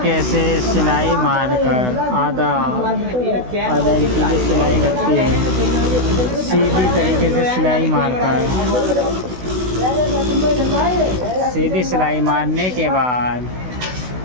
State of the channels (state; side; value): late; left; 16 ms